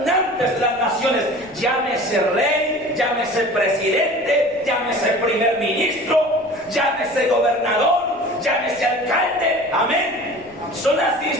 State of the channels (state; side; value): noise; left; rumble, 26 dB below the sound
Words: de las naciones, llámese rey, llámese presidente, llámese primer ministro, llámese gobernador, llámese alcalde, amén. Son las